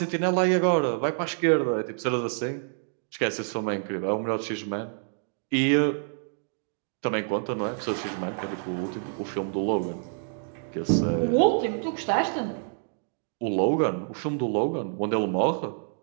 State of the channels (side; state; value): left; silent; digital silence